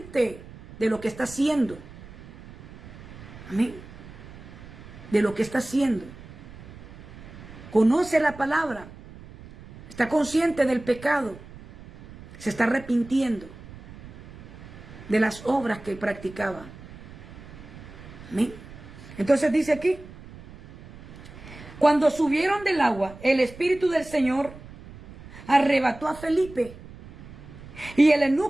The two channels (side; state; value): right; noise; rumble, 17 dB below the sound